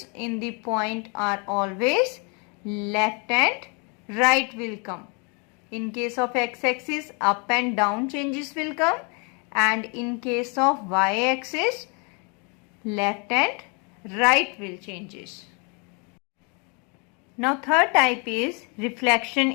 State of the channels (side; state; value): right; quieter; 34.2 dB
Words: in the point are always left and right will come. In case of x-axis, up and down changes will come, and in case of y-axis, left and right will changes. Now third type is reflection